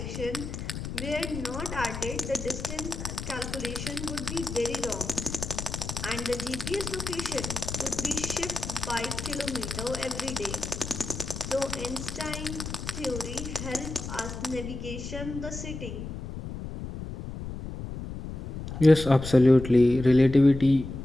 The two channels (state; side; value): noise; left; rumble, 7 dB below the sound